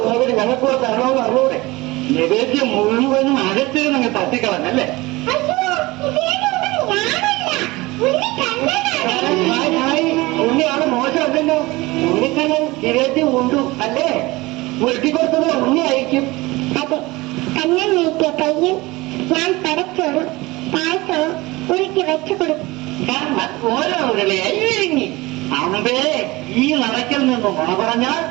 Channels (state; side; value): quieter; left; 21.4 dB